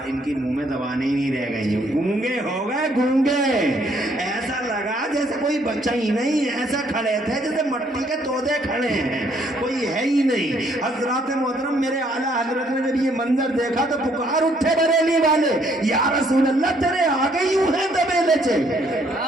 کی منہ میں زبانیں ہی نہیں رہ گئی, گونگے ہو گئے گونگے. ایسا لگا جیسے کوئی بچہ ہی نہیں, ایسا کھڑے تھے جیسے مٹی کے تودے کھڑے ہیں, کوئی ہے ہی نہیں. حضرات محترم میرے اعلیٰ حضرت نے جب یہ منظر دیکھا تو پکار اٹھے بریلی والے, یا رسول اللہ تیرے آگے یوں ہیں دبے لچے.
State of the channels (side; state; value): both; normal; correlation 0.67